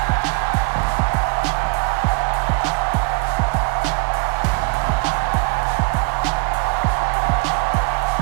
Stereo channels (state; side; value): quieter; left; 28.3 dB